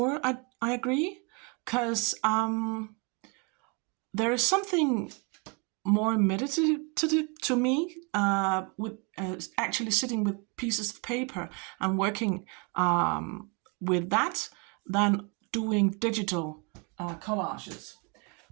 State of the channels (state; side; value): quieter; left; 32.2 dB